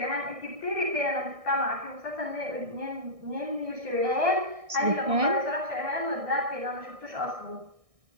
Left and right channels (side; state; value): left; late; 1.6 ms